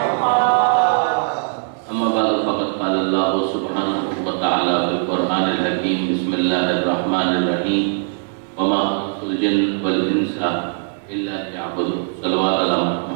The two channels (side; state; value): left; silent; digital silence